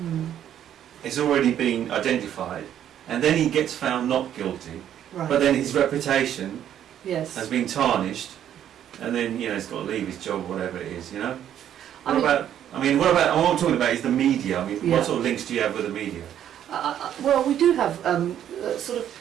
is already been identified, and then he gets found not guilty, Right. but then his reputation Yes. has been tarnished, and then, you know, he's got to leave his job, whatever it is, you know? I What I'm talking about is the media. I mean, Yeah. what sort of links do you have with the media? Well, we do have sort of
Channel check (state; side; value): quieter; left; 10.4 dB